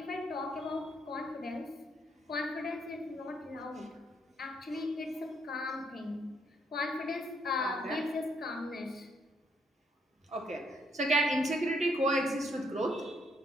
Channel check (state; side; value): normal; both; correlation 0.72